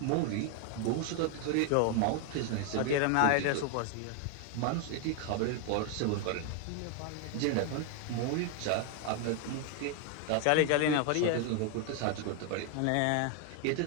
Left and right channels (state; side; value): different; both; correlation 0.01